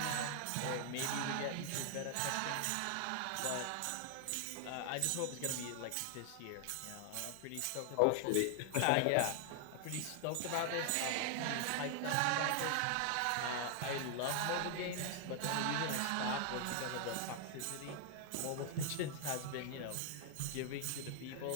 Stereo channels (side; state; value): both; different; correlation 0.00